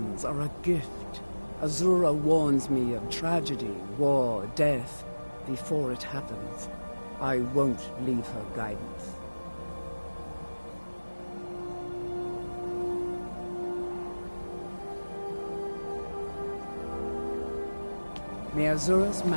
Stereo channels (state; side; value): inverted; both; correlation -1.00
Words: are a gift. Azura warns me of tragedy, war, death, before it happens. I won't leave her guidance. May Azura's